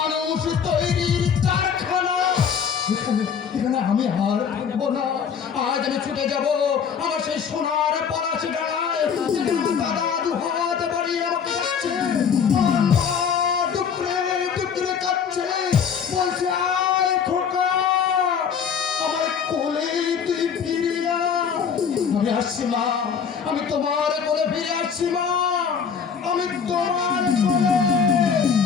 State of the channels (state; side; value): quieter; right; 6.9 dB